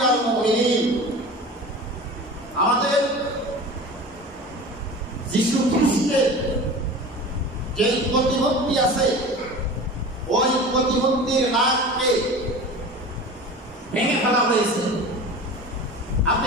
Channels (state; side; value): normal; both; correlation 0.35